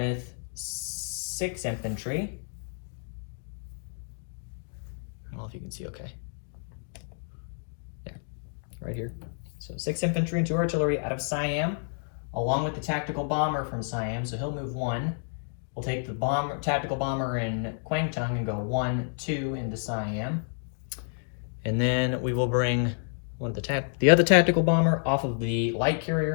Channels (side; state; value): right; silent; digital silence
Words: 6 infantry. I don't know if you can see okay. There, right here. So 6 infantry and 2 artillery out of Siam, along with the tactical bomber from Siam. So he'll move 1. We'll take the tactical bomber in Kwangtung and go 1, 2 into Siam. And then we will bring the other tactical bomber off of the light